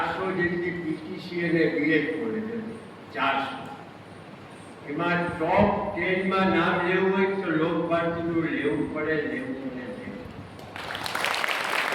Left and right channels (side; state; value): both; identical; correlation 1.00